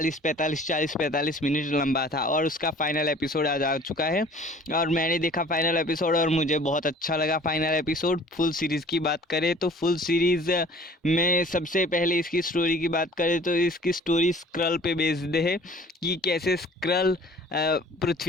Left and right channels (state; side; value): normal; both; correlation 0.49